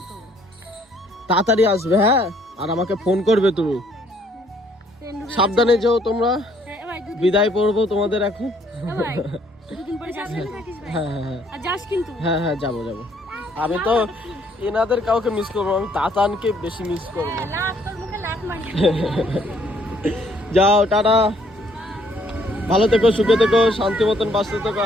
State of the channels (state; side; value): normal; both; correlation 0.65